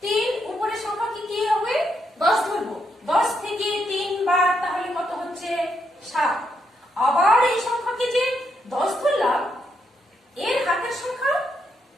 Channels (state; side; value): normal; both; correlation 0.79